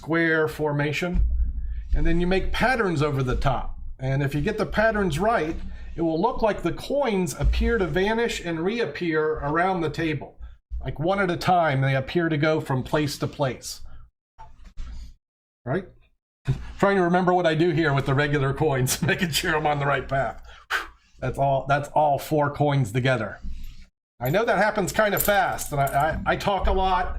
formation. And then you make patterns over the top. And if you get the patterns right, it will look like the coins appear to vanish and reappear around the table. Like one at a time, they appear to go from place to place. Right? Trying to remember what I do here with the regular coins, making sure I'm on the right path. That's all 4 coins together. I know that happens kind of fast, and I talk a lot,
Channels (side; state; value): both; identical; correlation 1.00